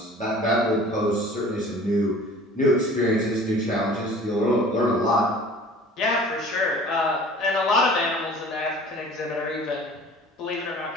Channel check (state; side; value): normal; both; correlation 0.47